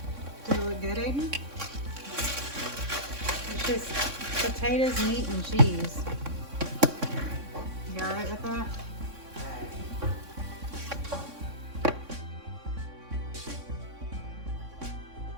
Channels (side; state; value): left; late; 3.6 ms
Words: It's just potatoes, meat, and cheese. You all right with that?